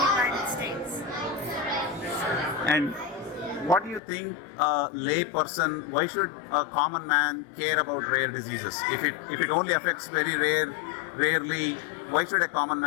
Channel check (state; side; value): drops out; right; at 4.0 s